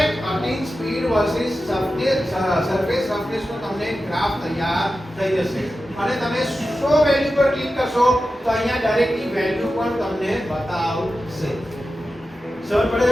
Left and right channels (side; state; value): both; normal; correlation 0.92